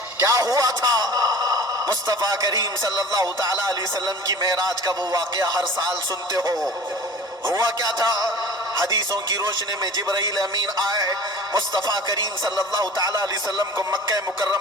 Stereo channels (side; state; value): both; normal; correlation 0.41